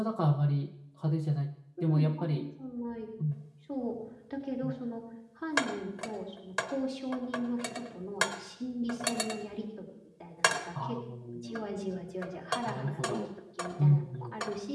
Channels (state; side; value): identical; both; correlation 1.00